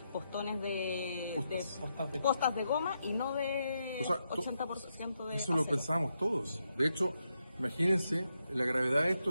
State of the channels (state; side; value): inverted; both; correlation -0.83